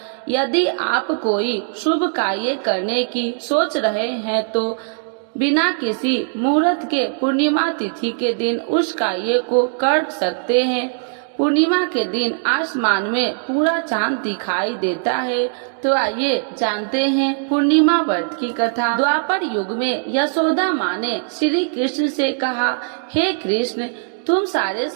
यदि आप कोई शुभ कार्य करने की सोच रहे हैं तो बिना किसी मुहूर्त के पूर्णिमा तिथि के दिन उस कार्य को कर सकते हैं। पूर्णिमा के दिन आसमान में पूरा चांद दिखाई देता है। तो आइए जानते हैं पूर्णिमा व्रत की कथा। द्वापर युग में यशोदा माँ ने श्री कृष्ण से कहा, हे कृष्ण, तुम सारे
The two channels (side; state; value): left; silent; digital silence